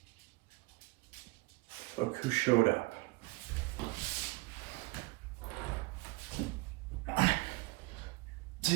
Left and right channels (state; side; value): quieter; left; 23.6 dB